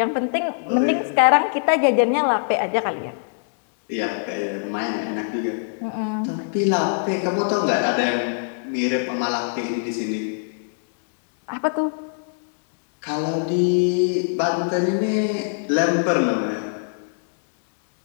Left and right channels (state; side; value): silent; right; digital silence